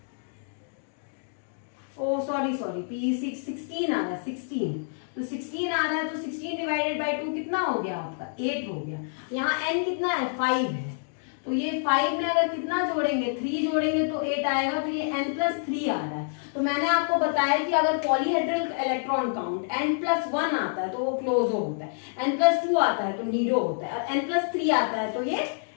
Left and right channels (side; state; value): right; silent; digital silence